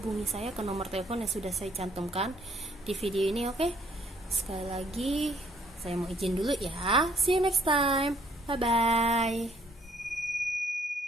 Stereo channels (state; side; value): normal; both; correlation 0.64